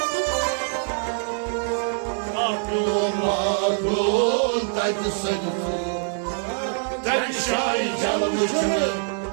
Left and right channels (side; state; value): left; silent; 63 dB below the other